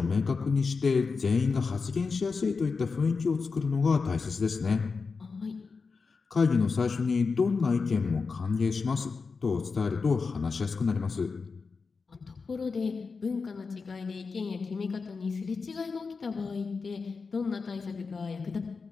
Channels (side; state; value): right; quieter; 4.7 dB